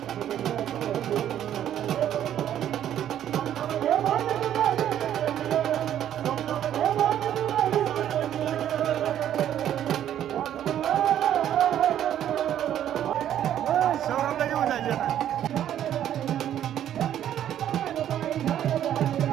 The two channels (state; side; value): quieter; left; 10.8 dB